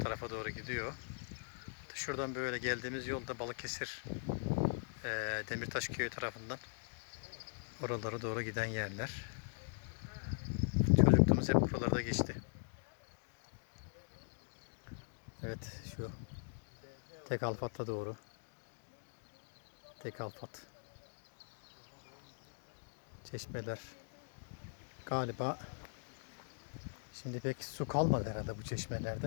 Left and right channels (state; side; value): silent; right; digital silence